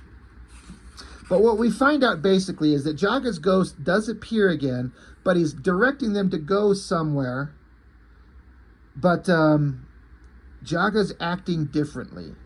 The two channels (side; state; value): both; identical; correlation 1.00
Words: But what we find out basically is that Jaga's ghost does appear again, but he's directing them to go somewhere. But Jaga's acting differently.